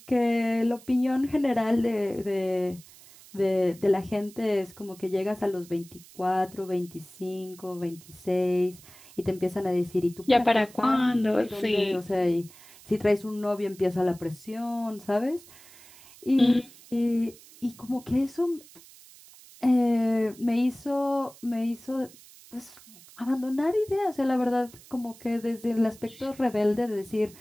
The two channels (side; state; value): right; noise; hiss, 22 dB below the sound